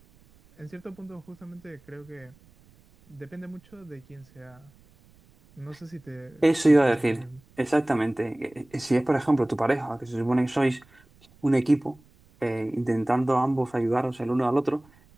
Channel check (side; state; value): right; noise; rumble, 29 dB below the sound